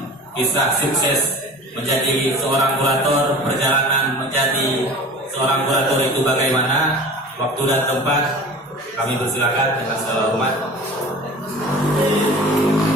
kisah sukses menjadi seorang kurator, perjalanan menjadi seorang kurator itu bagaimana, waktu dan tempat kami persilakan dengan segala hormat.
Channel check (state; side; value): normal; both; correlation 0.39